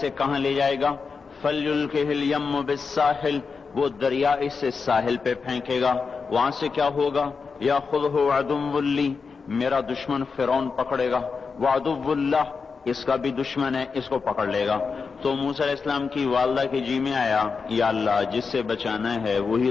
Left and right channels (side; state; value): right; quieter; 5.1 dB